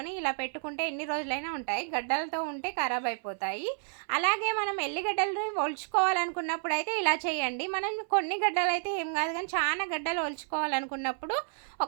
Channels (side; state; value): left; silent; 57 dB below the other